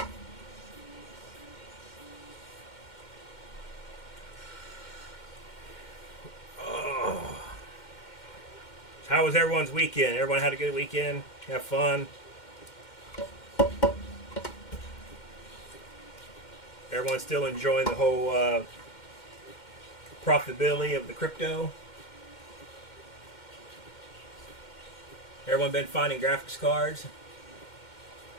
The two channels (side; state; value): right; late; 2.1 ms